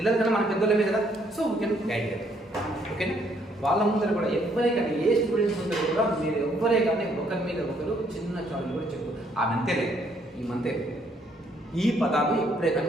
కన్నా మన పెద్దోళ్ళమే కదా, సో వీ కెన్ గైడ్ చేయాలి. ఓకేనా? వాళ్ళ ముందర కూడా ఎవరే కానీ ఏ స్టూడెంట్స్ ముందర కూడా మీరు ఎవరే కానీ ఒకరి మీద ఒకరు చిన్న చాలు కూడా చెప్పు ఆ మంతేలే ఈ మంతే ఈ పదాలు ఎప్పుడే కానీ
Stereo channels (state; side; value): normal; both; correlation 0.68